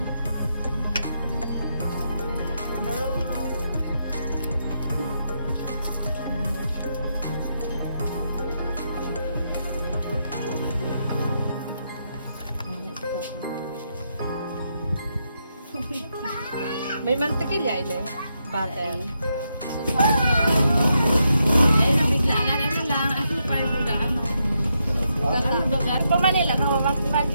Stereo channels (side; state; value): both; inverted; correlation -0.81